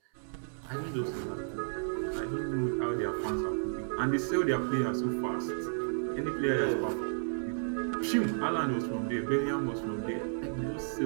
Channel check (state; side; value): silent; left; 56 dB below the other